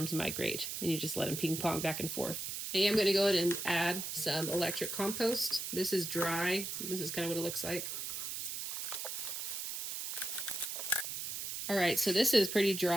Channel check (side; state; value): right; noise; hiss, 4 dB below the sound